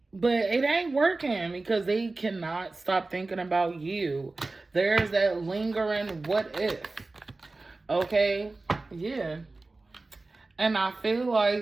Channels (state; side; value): quieter; left; 3.3 dB